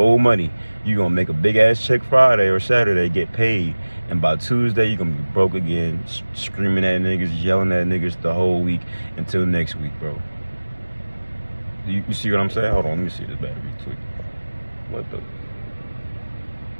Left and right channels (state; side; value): inverted; both; correlation -1.00